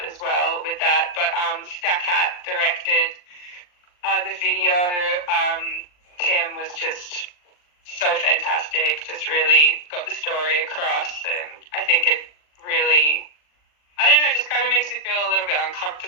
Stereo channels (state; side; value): late; right; 40 ms